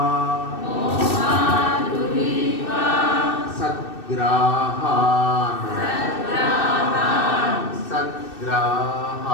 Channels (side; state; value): right; late; 2.6 ms